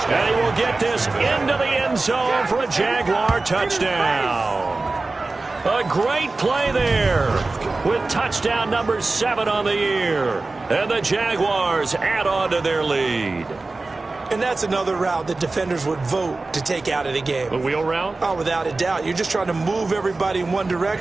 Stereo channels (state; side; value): quieter; left; 3.4 dB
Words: And he will get this into the end zone for a Jaguar touchdown. A great play there with touchdown number 7 on the year. And the Jaguars add on to their lead. And that's another route that defenders would vote to take out of the game. A wheel route? Oh, without a doubt. You're just trying to move everybody in one